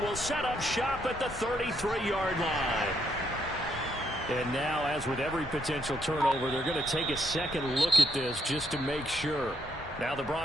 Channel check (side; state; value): both; normal; correlation 0.75